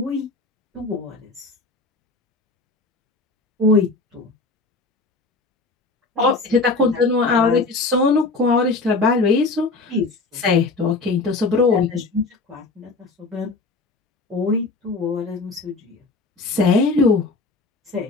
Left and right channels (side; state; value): right; quieter; 3.6 dB